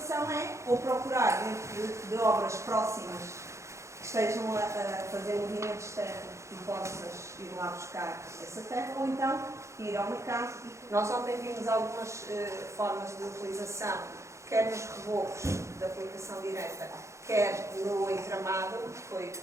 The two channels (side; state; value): left; late; 0.14 ms